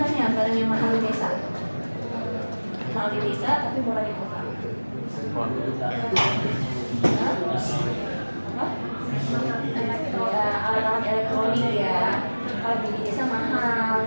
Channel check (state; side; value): inverted; both; correlation -1.00